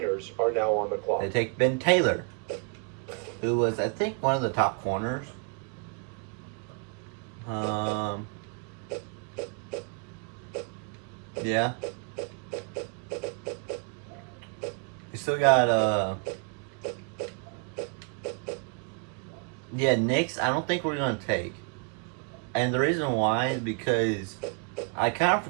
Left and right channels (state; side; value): quieter; left; 37.1 dB